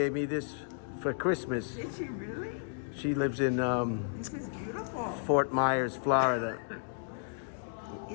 me this for Christmas. Did she really? She lives in This is beautiful. Fort Myers, Florida.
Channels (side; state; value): right; silent; digital silence